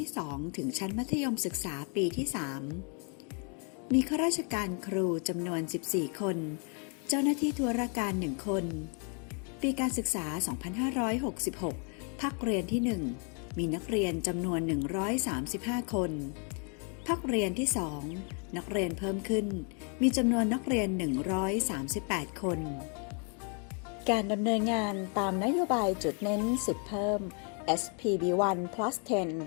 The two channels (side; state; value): right; quieter; 38.5 dB